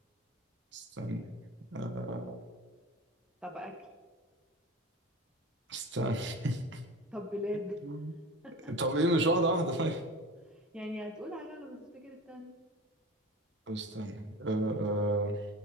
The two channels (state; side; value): normal; both; correlation 0.33